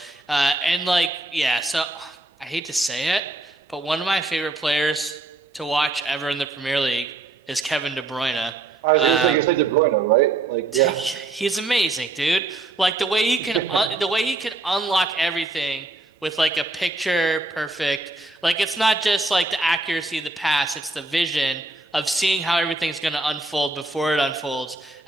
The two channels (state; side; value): quieter; left; 3.1 dB